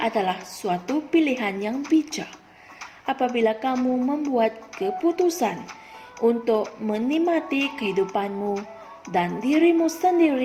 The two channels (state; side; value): identical; both; correlation 1.00